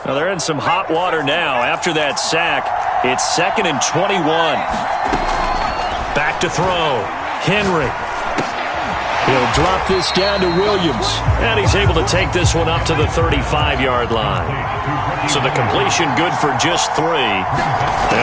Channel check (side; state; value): both; identical; correlation 1.00